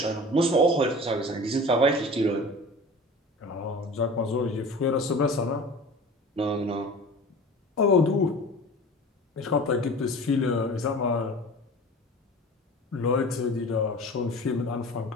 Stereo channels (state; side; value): normal; both; correlation 0.38